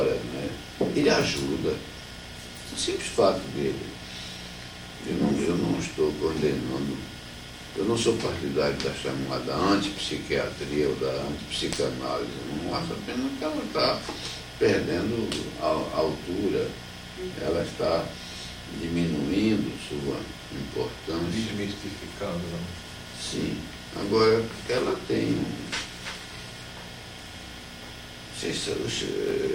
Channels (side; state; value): both; identical; correlation 1.00